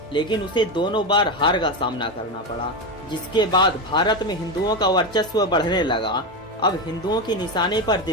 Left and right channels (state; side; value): normal; both; correlation 0.15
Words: लेकिन उसे दोनों बार हार का सामना करना पड़ा। जिसके बाद भारत में हिंदुओं का वर्चस्व बढ़ने लगा। अब हिंदुओं के निशाने पर